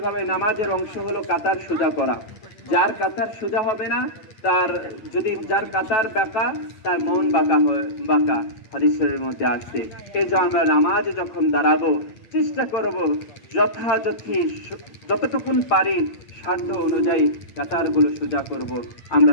ভাবে নামাজের অংশ হলো কাতার সোজা করা। যার কাতার সোজা হবে না, যার কাতার বাঁকা, তার মন বাঁকা হাদিসের মধ্যে আসছে। এই যে আমরা নামাজে যখন দাঁড়াবো, চেষ্টা করব যতটুকুন পারি সাধ্য অনুযায়ী কাতারগুলো সোজা করব। আমরা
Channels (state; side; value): late; right; 8.7 ms